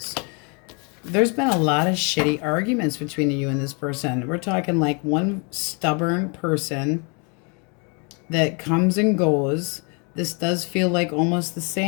There's been a lot of shitty arguments between you and this person. We're talking like one stubborn person that comes and goes. This does feel like almost the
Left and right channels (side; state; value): right; quieter; 34.5 dB